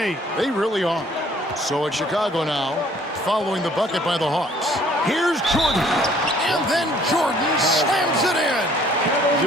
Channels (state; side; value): normal; both; correlation 0.58